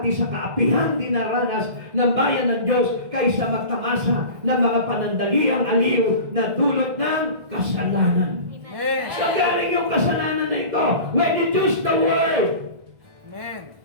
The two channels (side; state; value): left; late; 1.6 ms